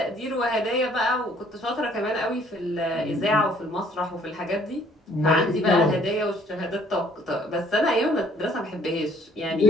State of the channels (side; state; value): both; normal; correlation 0.61